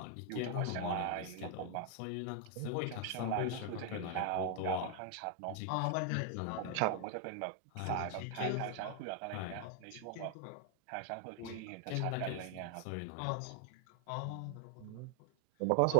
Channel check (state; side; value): different; both; correlation 0.00